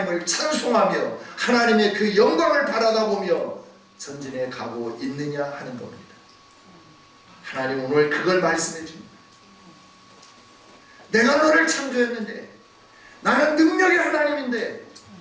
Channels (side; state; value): both; identical; correlation 1.00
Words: 찬송하며 하나님의 그 영광을 바라다 보며 전진해 가고 있느냐 하는 겁니다. 하나님 오늘 그걸 말씀해 줍니다. 내가 너를 창조했는데, 나는 능력의 하나님인데,